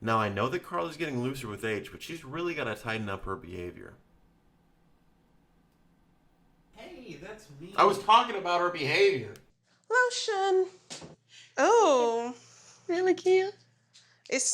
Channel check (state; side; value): identical; both; correlation 1.00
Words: Now, I know that Carla's getting looser with age, but she's really gotta tighten up her behavior. Hey, that's me. I was talking about her behavior. Lotion. Oh, Really cute. it's